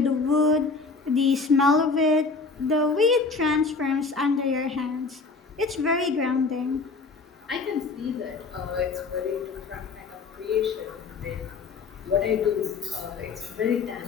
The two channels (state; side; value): quieter; right; 4.3 dB